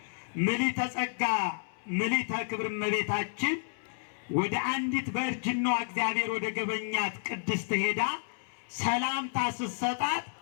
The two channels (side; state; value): right; silent; 57 dB below the other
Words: ምልዕተ ጸጋ ምልዕተ ክብር እመቤታችን ወደ አንዲት በእርጅናዋ እግዚአብሔር ወደ ገበኛት ቅድስት ሄዳ ሰላምታ ስትሰጣት